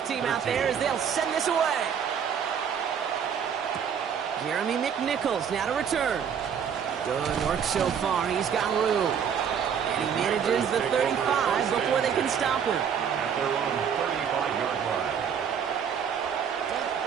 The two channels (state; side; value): quieter; left; 7.7 dB